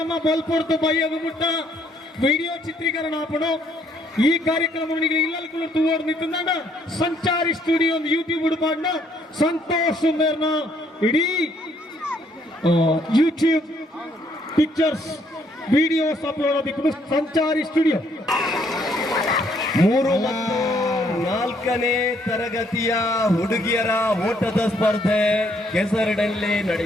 ಬಲ್ಪೊಡ್ತು ಬಯ್ಯಗುಮುಟ್ಟ ವಿಡಿಯೋ ಚಿತ್ರೀಕರಣ ಆಪಣು. ಈ ಕಾರ್ಯಕ್ರಮ ಇಲ್ಲೂ ತೂವರ್ ನಿಂತ ಸಂಚಾರಿ ಸ್ಟುಡಿಯೋ ಯೂಟ್ಯೂಬ್ ಹುಡುಪಾಡ್ನ ಸಂತೋಷ್ ಸುಂದರ್ನ ಇಡೀ ಯೂಟ್ಯೂಬ್ ಪಿಕ್ಚರ್ಸ್ ವಿಡಿಯೋಸ್ ಅಪ್ಲೋಡ್ ಆದಿಕ್ಕೂ ಸಂಚಾರಿ ಸ್ಟುಡಿಯೋ. 3 ಮತ್ತು 4ನೇ ತರಗತಿಯ ಹುಡುಗಿಯರ ಓಟದ ಸ್ಪರ್ಧೆ ಕೆಸರಡಲ್ಲಿ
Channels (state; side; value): normal; both; correlation 0.68